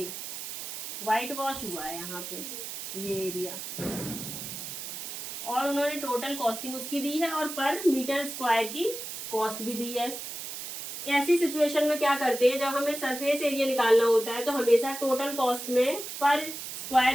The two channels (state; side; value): noise; right; hiss, 8 dB below the sound